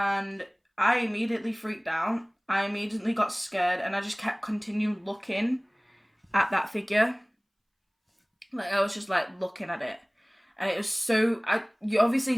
I immediately freaked out. I immediately got scared, and I just kept continuing looking at that figure. I was just looking at it. And it was so, you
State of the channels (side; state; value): both; identical; correlation 1.00